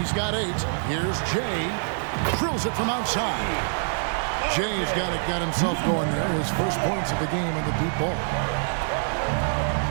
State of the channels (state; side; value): silent; left; digital silence